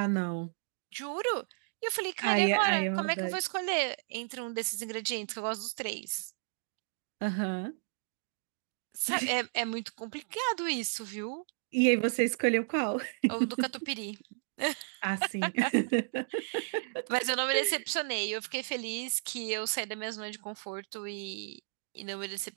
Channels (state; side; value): silent; left; digital silence